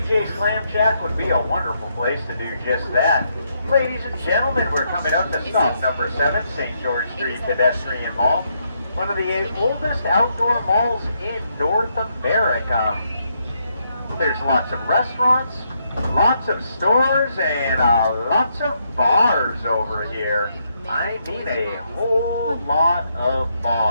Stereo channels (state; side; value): inverted; both; correlation -0.77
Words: Clam Shack would be a wonderful place to do just that. Ladies and gentlemen, we're coming up to stop number 7, St. George Street Pedestrian Mall, one of the oldest outdoor malls in North America. There's lots of restaurants, lots of stores, and lots of bars over here. I mean a whole lot of